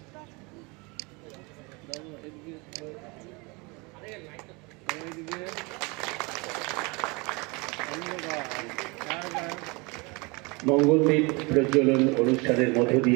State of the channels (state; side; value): quieter; left; 27.9 dB